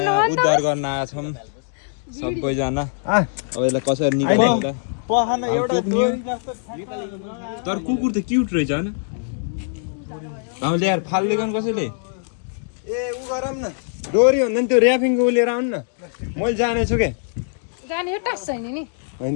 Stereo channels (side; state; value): right; silent; digital silence